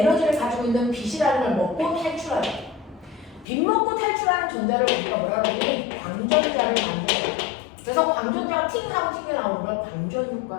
가지고 있는 빛이라는 걸 먹고 탈출하죠. 빛 먹고 탈출하는 전자를 우리가 뭐라 그러니? 광전자를 만들어요. 그래서 광전자가 팅하고 튕겨나오는 걸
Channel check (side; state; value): right; drops out; at 3.5 s